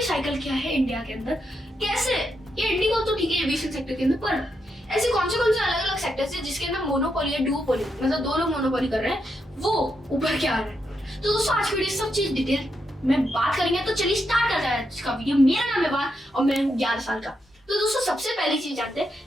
साइकिल क्या है इंडिया के अंदर। कैसे ये इंडिगो तो ठीक है एविएशन सेक्टर के अंदर, पर ऐसे कौन से अलग अलग सेक्टर्स है जिसके अंदर मोनोपोली है, डुओपोली, मतलब दो लोग मोनोपोली कर रहे हैं, वो उभर के आ रहे हैं। तो दोस्तों, आज की वीडियो सब चीज डिटेल में बात करेंगे। तो चलिए स्टार्ट करते हैं आज का वीडियो। मेरा नाम है वान और मैं हूँ 11 साल का। तो दोस्तों, सबसे पहली चीज जानते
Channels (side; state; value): both; normal; correlation 0.82